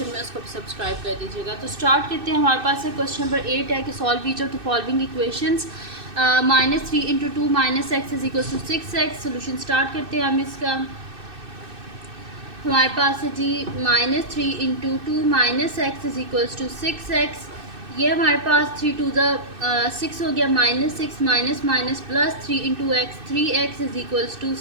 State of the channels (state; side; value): late; left; 2.6 ms